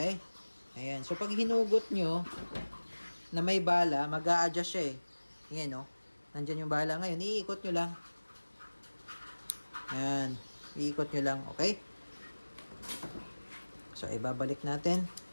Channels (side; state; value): both; inverted; correlation -1.00